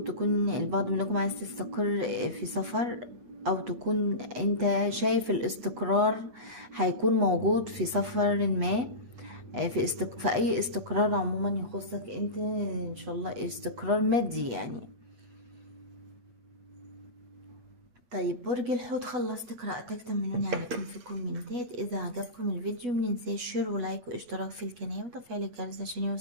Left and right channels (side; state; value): left; late; 8.1 ms